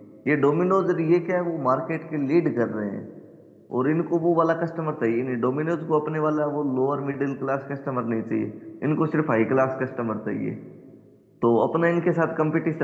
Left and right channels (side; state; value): both; identical; correlation 1.00